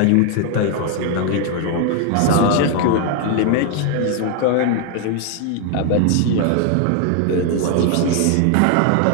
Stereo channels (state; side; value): different; both; correlation 0.00